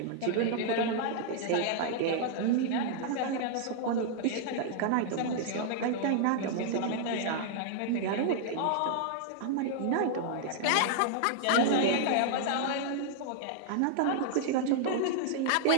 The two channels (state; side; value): different; both; correlation -0.01